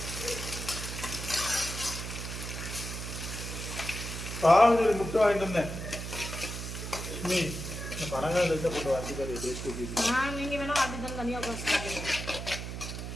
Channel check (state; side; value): noise; right; hum, 6 dB below the sound